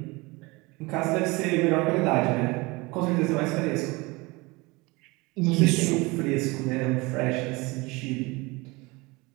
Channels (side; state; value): left; quieter; 24.3 dB